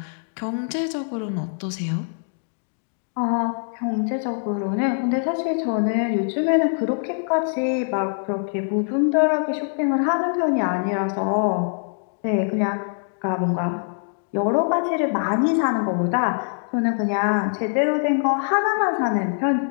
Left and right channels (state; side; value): silent; right; digital silence